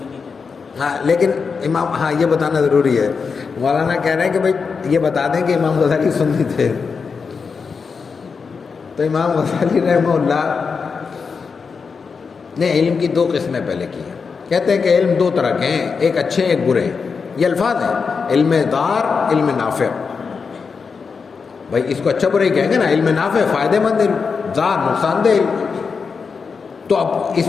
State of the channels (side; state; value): right; quieter; 5.3 dB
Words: ہاں لیکن امام، ہاں یہ بتانا ضروری ہے، مولانا کہہ رہے ہیں کہ بھائی یہ بتا دیں کہ امام غزالی سنی تھے۔ تو امام غزالی رحمہ اللہ نے علم کی 2 قسمیں پہلے کی ہیں۔ کہتے ہیں کہ علم 2 طرح کے ہیں، ایک اچھے ایک برے، یہ الفاظ ہیں، علم دار، علم نافع۔ بھائی اس کو اچھا برا ہی کہیں گے نا، علم نافع فائدہ مند علم، دار نقصان دہ علم۔ تو اب